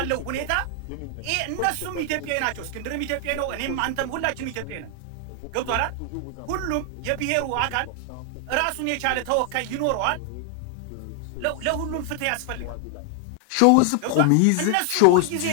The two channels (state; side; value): different; both; correlation 0.00